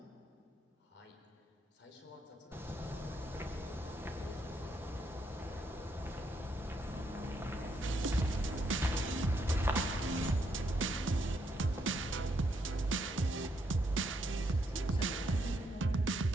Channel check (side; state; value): both; normal; correlation 0.76